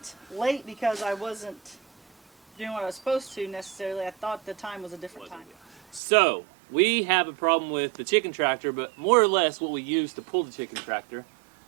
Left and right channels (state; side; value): drops out; left; at 6.0 s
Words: late because I wasn't doing what I was supposed to necessarily. I thought the time was a different time. So, we have a problem with the chicken tractor, but more or less what we use to pull the chicken tractor.